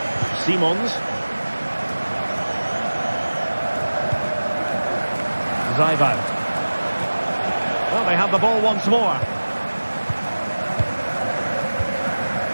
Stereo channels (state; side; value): inverted; both; correlation -1.00